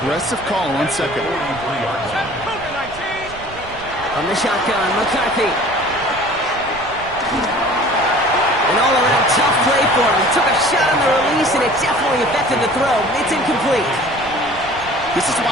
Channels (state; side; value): noise; right; rumble, 18 dB below the sound